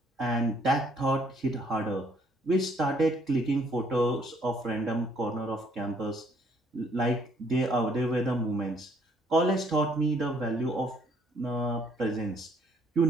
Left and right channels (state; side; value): normal; both; correlation 0.64